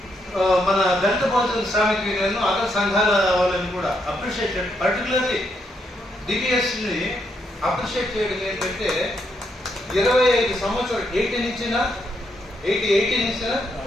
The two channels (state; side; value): normal; both; correlation 0.78